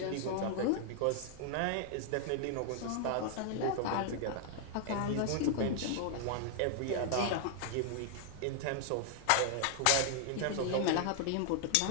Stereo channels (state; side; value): different; both; correlation 0.00